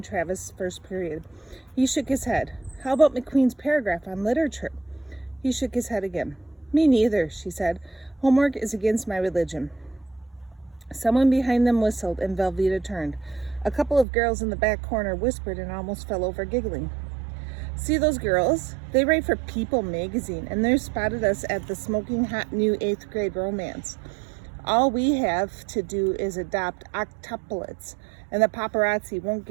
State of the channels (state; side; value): drops out; left; at 14.1 s